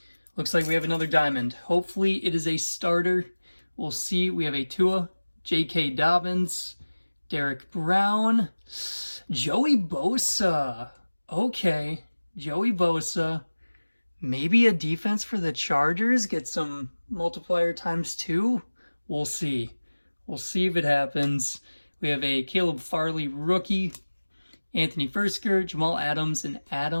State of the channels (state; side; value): inverted; both; correlation -1.00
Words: Looks like we have another diamond. Hopefully it is a starter. We'll see. We have a Tua, J.K. Dobbins, Derek Brown, Joey Bosa. Okay, Joey Bosa. Maybe a defense for the Chargers. Get some multiplier ×2. We'll see. We'll see if it happens. We have a Caleb Farley rookie, Anthony Fursker, Jamal Adams, and